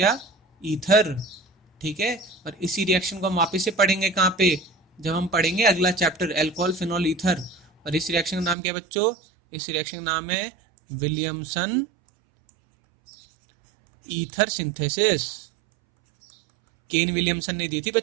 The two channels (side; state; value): left; drops out; at 8.6 s